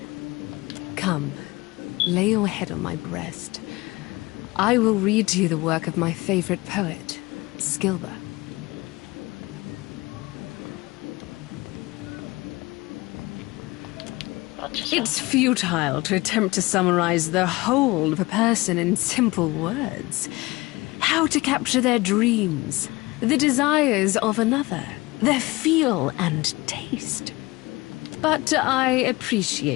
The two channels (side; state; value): right; quieter; 21.8 dB